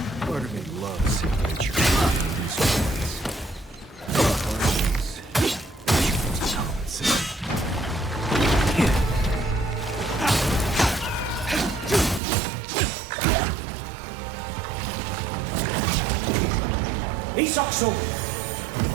Part of me loves adventure. Isokso!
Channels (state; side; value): drops out; left; at 12.2 s